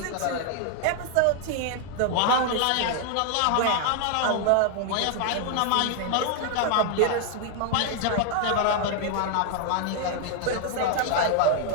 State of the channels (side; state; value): both; different; correlation 0.00